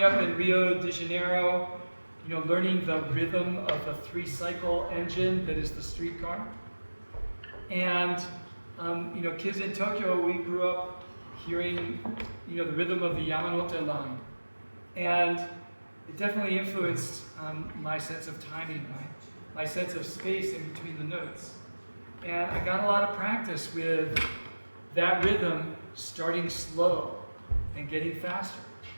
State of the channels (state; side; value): inverted; both; correlation -1.00